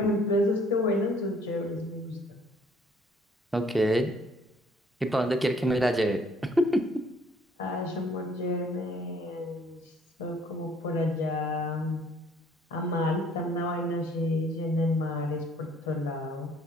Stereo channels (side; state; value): both; normal; correlation 0.60